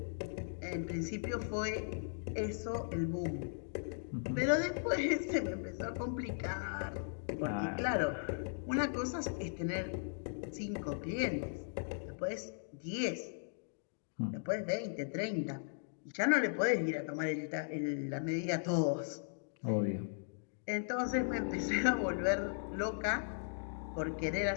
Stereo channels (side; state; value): right; silent; digital silence